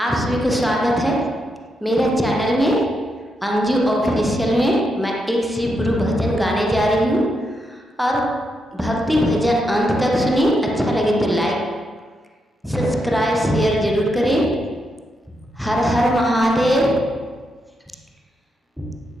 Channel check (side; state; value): both; normal; correlation 0.82